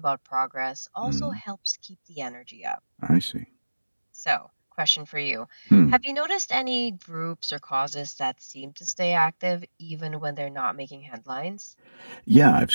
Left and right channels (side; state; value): both; inverted; correlation -1.00